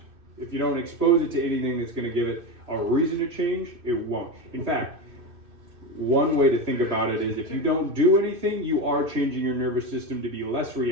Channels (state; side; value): late; left; 2.5 ms